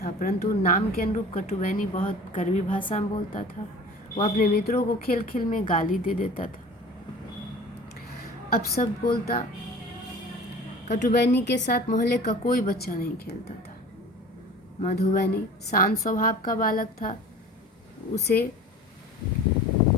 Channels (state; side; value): normal; both; correlation 0.41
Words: परंतु नाम के अनुरूप कटुबैनी बहुत कड़वी भाषा में बोलता था। वह अपने मित्रों को खेल खेल में गाली दे देता था। अब सब बोलता, कटुबैनी के साथ मोहल्ले का कोई बच्चा नहीं खेलता था। मधुबैनी शांत स्वभाव का बालक था, उसे